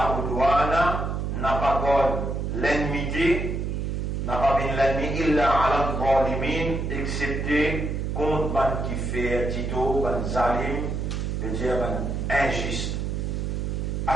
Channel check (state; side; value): noise; right; hum, 2 dB below the sound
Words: udwana, n'a pas l'ennemi, n'a pas bien l'ennemi illa ala al-zalimin, excepté contre ban qui fait dito, ban zalim, veut dire ban injuste.